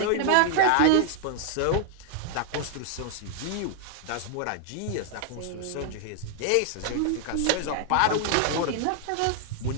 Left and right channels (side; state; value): both; different; correlation 0.00